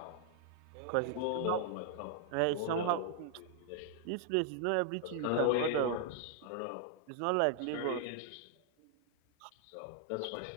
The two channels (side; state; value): both; different; correlation 0.00